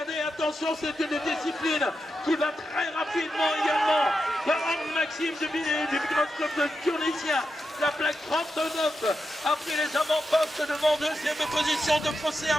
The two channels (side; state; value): both; normal; correlation 0.88